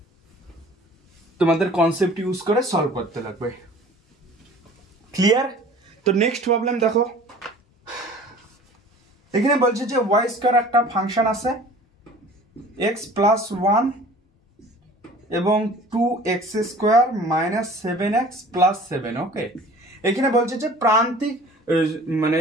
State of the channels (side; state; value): both; normal; correlation 0.46